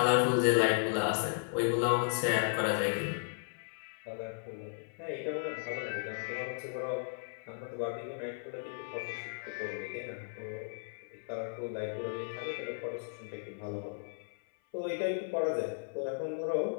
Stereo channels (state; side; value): silent; right; 54 dB below the other